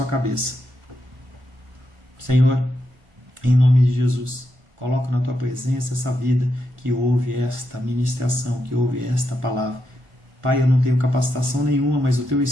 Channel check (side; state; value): left; late; 1.5 ms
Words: cabeça. Senhor, em nome de Jesus, coloco na tua presença essa vida que ouve esta ministração, que ouve esta palavra. Pai, eu não tenho capacitação nenhuma, mas o teu